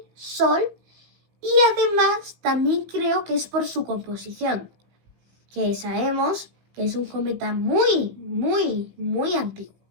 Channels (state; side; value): late; left; 17 ms